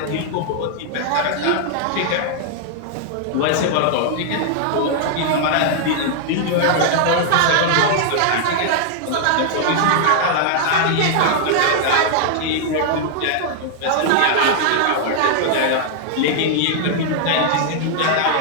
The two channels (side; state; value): both; different; correlation 0.00